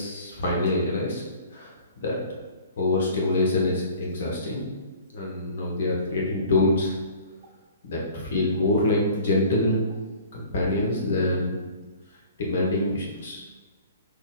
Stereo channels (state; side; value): inverted; both; correlation -0.47